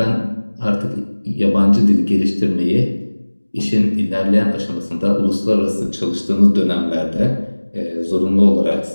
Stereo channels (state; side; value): inverted; both; correlation -1.00